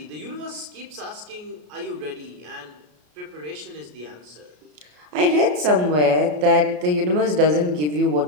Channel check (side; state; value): left; late; 33 ms